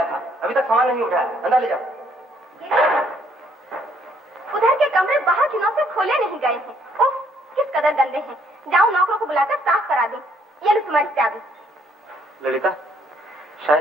था? अभी तक सामान नहीं उठाया, अंदर ले जाओ। उधर के कमरे बाहर की नौ से खोले नहीं गए हैं। उफ, किस कदर गंदे हैं। जाओ नौकरों को बुलाकर साफ करा दो। ये लो तुम्हारी चाबी। ललिता,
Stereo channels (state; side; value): normal; both; correlation 0.66